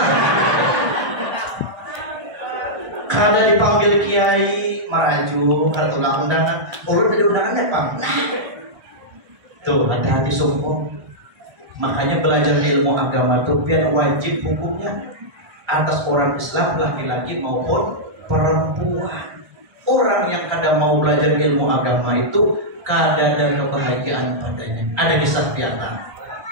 Kada dipanggil kiai maraju, kada tulang undangan, urut di undangannya pang. Tuh, hati-hati sombong. Makanya belajar ilmu agama itu biar wajib hukumnya atas orang Islam, laki-laki maupun perempuan. Orang yang kadang mau belajar ilmu agama itu kada ada kebahagiaan padanya. Ada kisah piatan.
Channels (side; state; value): left; late; 1.4 ms